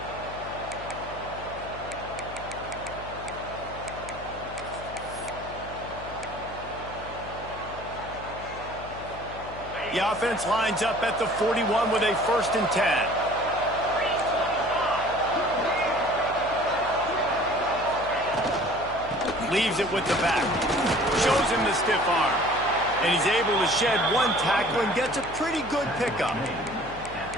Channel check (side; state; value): left; noise; hum, 14 dB below the sound